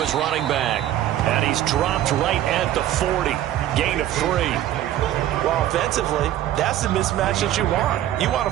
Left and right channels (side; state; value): left; quieter; 12.6 dB